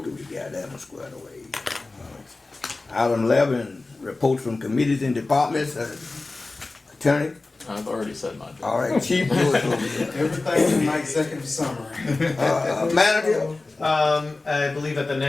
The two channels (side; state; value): right; quieter; 3.4 dB